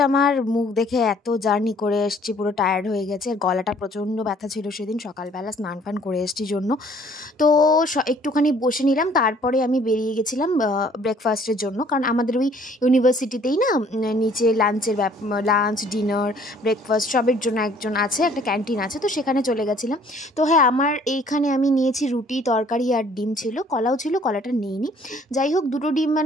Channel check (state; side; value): normal; both; correlation 0.58